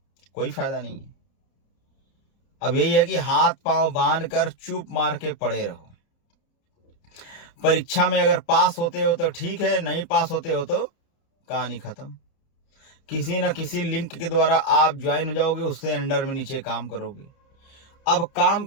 कोई फ़ायदा नहीं है। अब यही है कि हाथ पांव बांध कर चुप मार के पड़े रहो। परीक्षा में अगर पास होते हो तो ठीक है, नहीं पास होते हो तो कहानी खत्म। किसी न किसी लिंक के द्वारा आप ज्वाइन हो जाओगे, उससे अंडर में नीचे काम करोगे। अब काम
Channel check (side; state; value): right; late; 30 ms